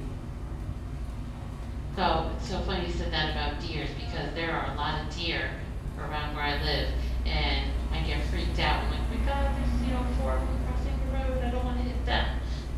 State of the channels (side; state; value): both; identical; correlation 1.00